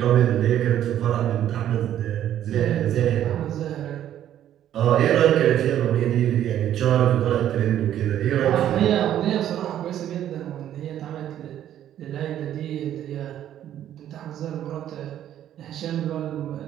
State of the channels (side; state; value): left; quieter; 11.2 dB